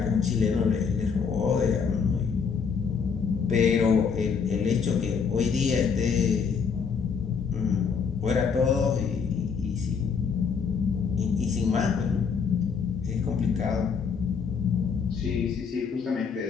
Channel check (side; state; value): right; quieter; 6.0 dB